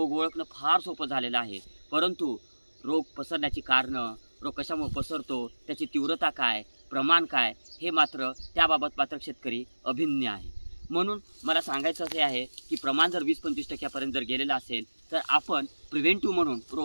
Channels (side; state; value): both; inverted; correlation -1.00